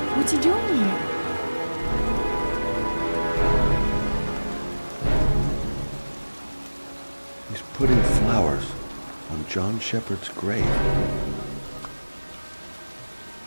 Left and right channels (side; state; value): both; inverted; correlation -1.00